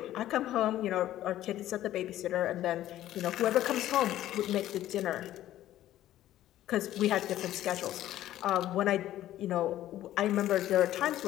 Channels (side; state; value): right; quieter; 13.4 dB